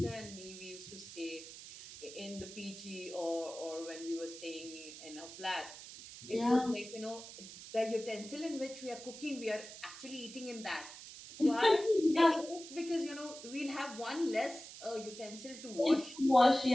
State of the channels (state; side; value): noise; right; hiss, 13 dB below the sound